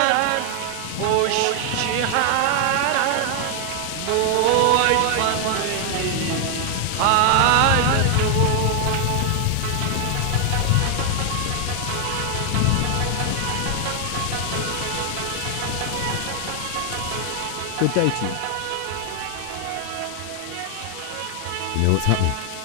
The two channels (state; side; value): different; both; correlation 0.00